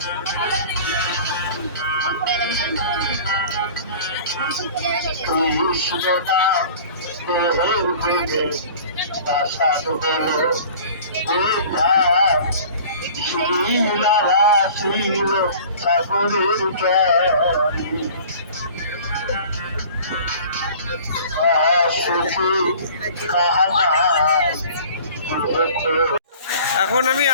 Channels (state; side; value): inverted; both; correlation -0.45